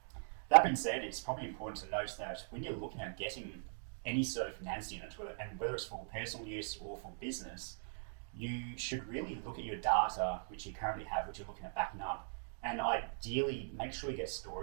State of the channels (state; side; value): silent; left; digital silence